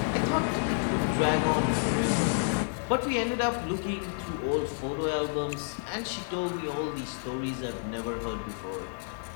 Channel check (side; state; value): right; silent; digital silence